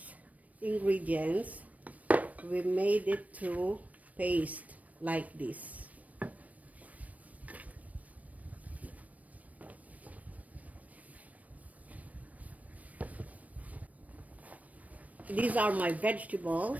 ingredients, we made it to paste like this. These are my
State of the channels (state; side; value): late; left; 0.070 ms